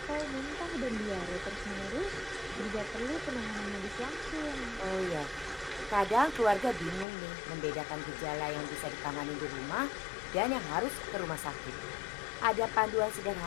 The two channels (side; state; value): right; drops out; at 7.1 s